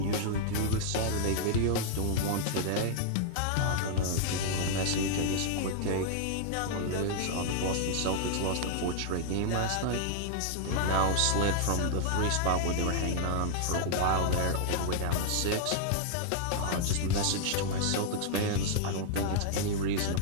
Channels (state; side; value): different; both; correlation -0.01